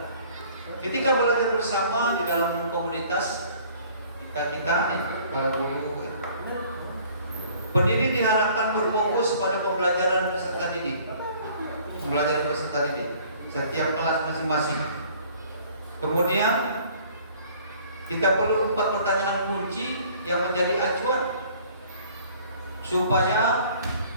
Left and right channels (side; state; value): both; inverted; correlation -0.54